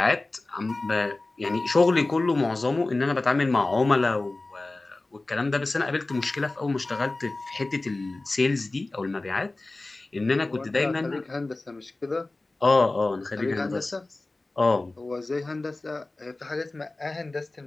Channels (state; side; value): quieter; right; 3.1 dB